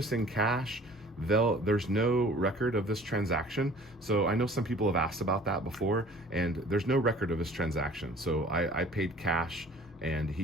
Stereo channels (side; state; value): both; normal; correlation 0.49